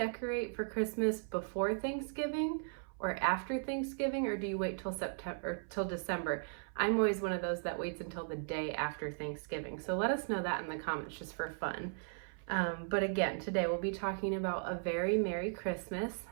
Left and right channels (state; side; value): silent; left; 53 dB below the other